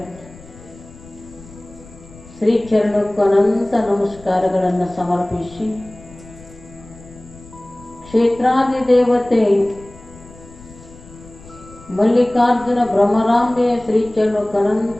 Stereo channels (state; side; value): noise; left; rumble, 21 dB below the sound